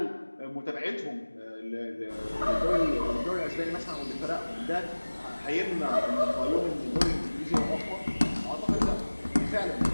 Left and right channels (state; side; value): inverted; both; correlation -1.00